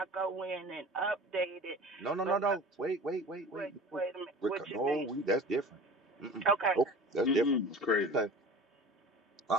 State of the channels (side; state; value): both; normal; correlation 0.39